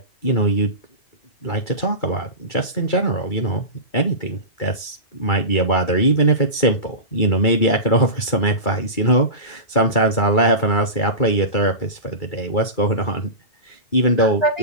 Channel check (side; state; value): right; late; 2.3 ms